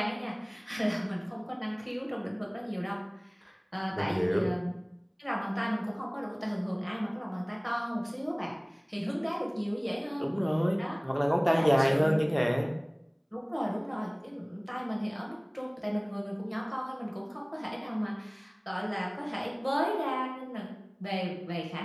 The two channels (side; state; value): both; identical; correlation 1.00